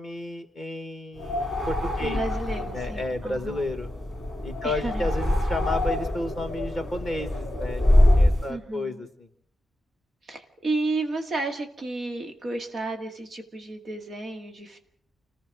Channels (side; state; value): both; normal; correlation 0.90